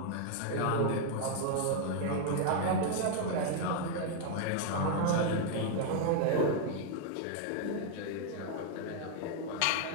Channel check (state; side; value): different; both; correlation 0.00